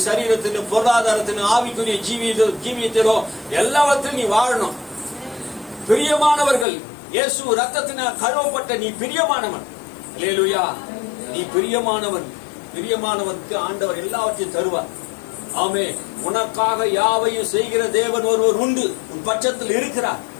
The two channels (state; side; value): drops out; right; at 6.7 s